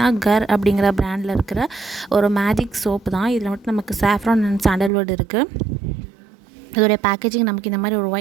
கர் அப்படிங்கிற பிராண்டில் இருக்கிற ஒரு மேஜிக் சோப்பு தான். இதில் மட்டும் நமக்கு சாஃப்ரான் அண்ட் சாண்டல்வுட் இருக்குது. இதோடைய பேக்கேஜிங் நமக்கு இந்த மாதிரி ஒரு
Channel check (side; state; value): left; drops out; at 4.9 s